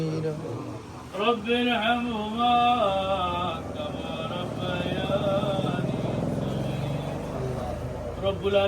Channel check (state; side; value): identical; both; correlation 1.00